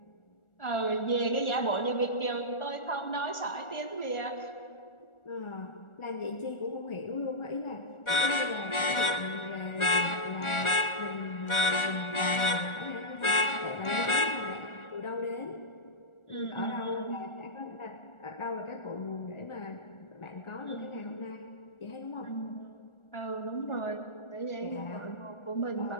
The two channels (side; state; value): right; late; 1.4 ms